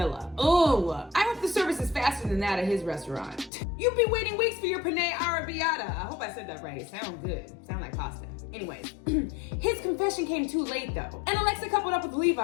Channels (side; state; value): right; drops out; at 3.5 s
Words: Oh, I hope the service is faster than that at his restaurant. You've been waiting weeks for your penne arrabbiata. I hope I said that right. It sounds good. Sound like pasta. Anyways, his confession came too late though, and Alexa coupled up with